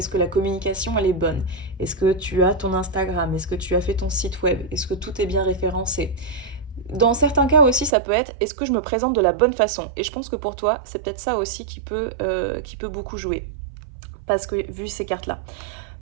que la communication, elle est bonne? Est-ce que tu as ton Instagram? Est-ce que tu as fait ton site web? Est-ce que tout est bien référencé? Dans certains cas aussi, ça peut être est-ce que je me présente de la bonne façon? Et je pense que pour toi, c'est peut-être ça aussi qui peut beaucoup jouer. Parce que vu ces cartes-là.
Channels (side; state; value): left; drops out; at 8.0 s